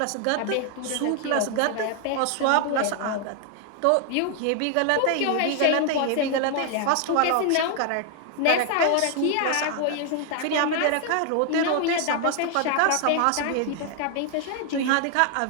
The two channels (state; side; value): different; both; correlation 0.00